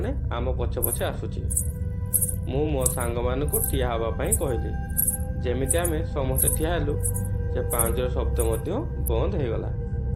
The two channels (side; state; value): both; identical; correlation 1.00